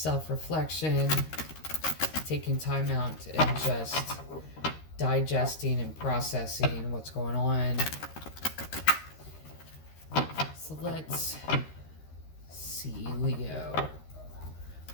taking time out and just digesting and processing what's going on. So let's see, Leo.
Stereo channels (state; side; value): late; right; 13 ms